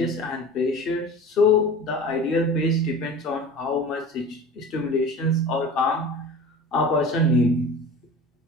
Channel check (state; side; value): normal; both; correlation 0.37